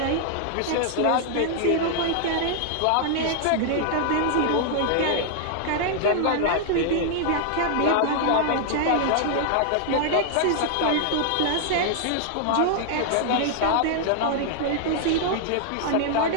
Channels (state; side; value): different; both; correlation 0.00